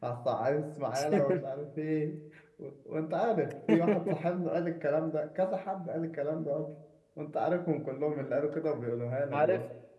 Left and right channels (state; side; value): identical; both; correlation 1.00